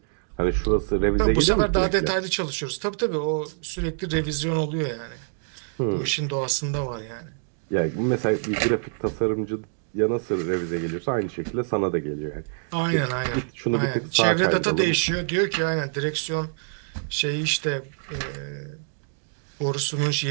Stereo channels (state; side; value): silent; left; digital silence